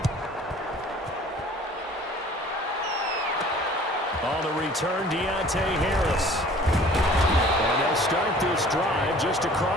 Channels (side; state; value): both; normal; correlation 0.49